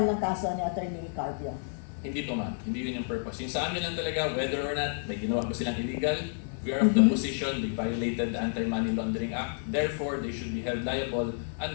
ng kaso ni Attorney Carpio. Hindi po ma'am, hindi yun yung purpose. Yung sa amin lang talaga, whether or not may ginawa pa silang illegal, we are of the position, they violated the Anti-Money Laundering Act, therefore they should be held liable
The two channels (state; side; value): silent; right; 58 dB below the other